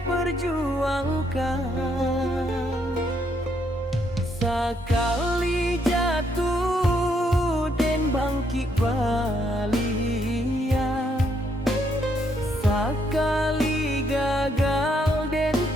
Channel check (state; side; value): normal; both; correlation 0.73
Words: perjuangkan. Sakali jatuh den bangkit balia, sakali gagal den